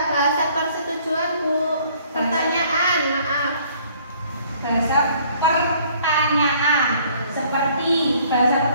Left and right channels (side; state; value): both; inverted; correlation -0.59